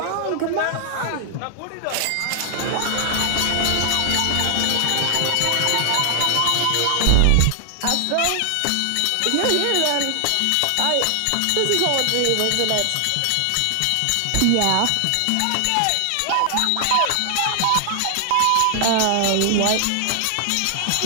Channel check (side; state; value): both; different; correlation 0.00